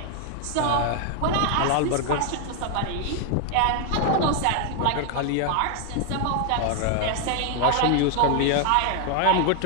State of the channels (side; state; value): both; different; correlation 0.00